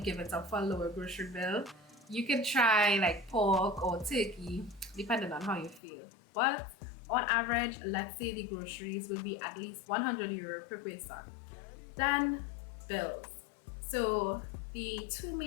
it up for a lower grocery bill, you can try like pork or turkey, depending on how you feel. But on average, let's say the groceries will be at least €100 per person. Then bills. So the two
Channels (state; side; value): drops out; right; at 5.8 s